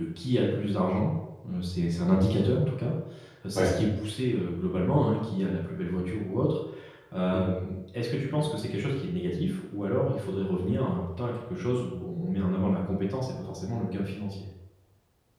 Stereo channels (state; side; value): identical; both; correlation 1.00